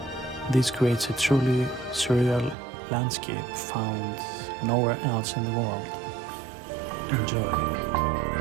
This creates a truly surreal landscape found nowhere else in the world. Enjoy.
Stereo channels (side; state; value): left; drops out; at 2.6 s